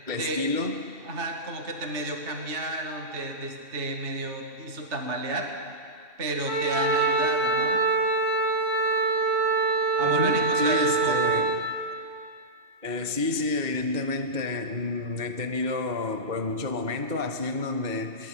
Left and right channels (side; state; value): left; late; 2.7 ms